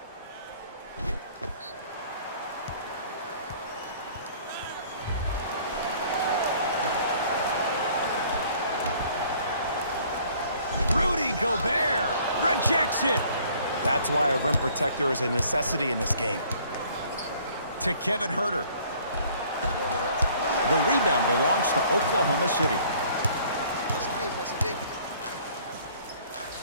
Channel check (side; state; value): both; inverted; correlation -0.57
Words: Rudy Gobert rejects it. That's why a rim protector is a necessity in this game. To Kevin Huerter. The rebound belongs to Oklahoma City. That's a big.